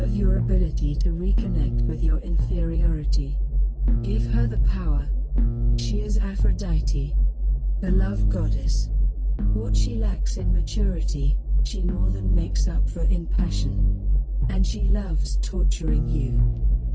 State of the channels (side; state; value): both; identical; correlation 1.00